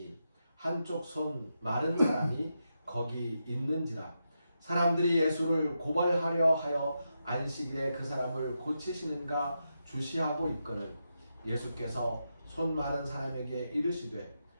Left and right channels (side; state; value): both; inverted; correlation -0.86